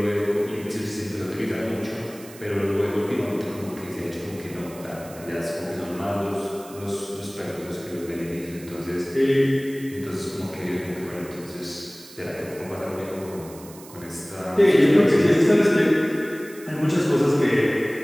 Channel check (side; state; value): right; noise; hiss, 19 dB below the sound